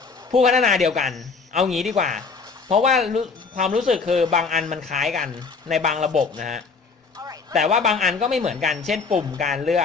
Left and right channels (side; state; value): right; quieter; 4.8 dB